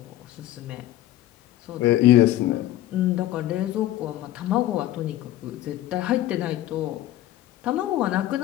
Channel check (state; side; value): quieter; right; 14.1 dB